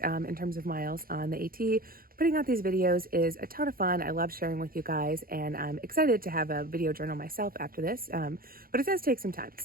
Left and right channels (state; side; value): late; left; 0.42 ms